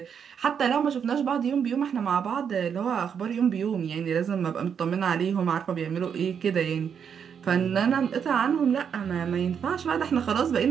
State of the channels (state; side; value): quieter; left; 7.4 dB